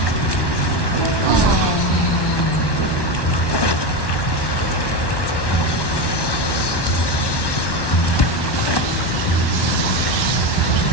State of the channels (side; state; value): right; late; 1.1 ms